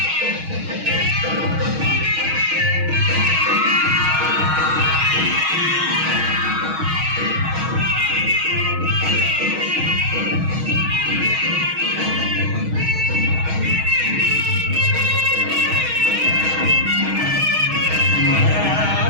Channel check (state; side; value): late; left; 6.3 ms